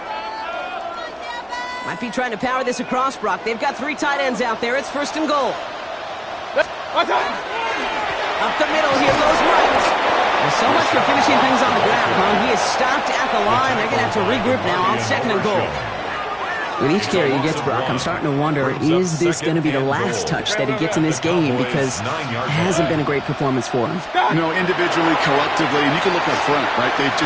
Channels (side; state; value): both; identical; correlation 1.00